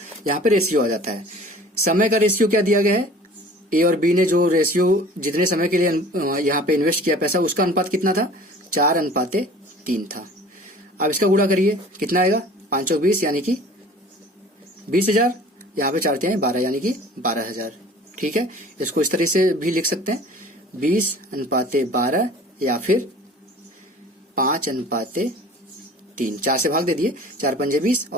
यहाँ पे रेशियो आ जाता है। समय का रेशियो क्या दिया गया है, ए और बी ने जो रेशियो जितने समय के लिए यहाँ पे इन्वेस्ट किया पैसा उसका अनुपात कितना था, 4:3 था। अब इसका गुणा करिए कितना आएगा, 5 और 20 यानी कि 20,000, यहाँ पे 4×3 12 यानी कि 12,000। ठीक है, इसको इस तरह से भी लिख सकते हैं 20:12 या फिर 5:3। 4 से भाग दे दिए, 4 पंजे 20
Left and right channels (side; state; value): both; normal; correlation 0.46